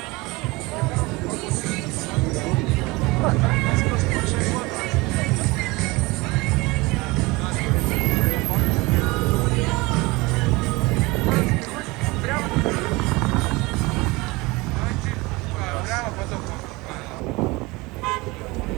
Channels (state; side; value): quieter; left; 23.3 dB